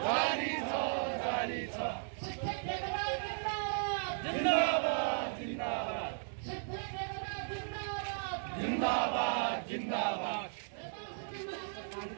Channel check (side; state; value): left; silent; digital silence